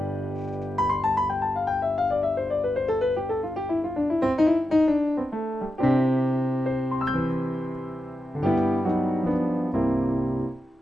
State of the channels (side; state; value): both; normal; correlation 0.89